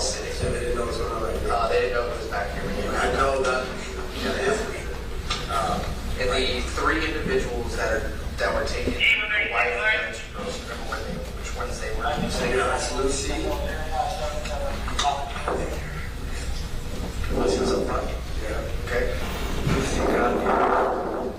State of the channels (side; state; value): both; identical; correlation 1.00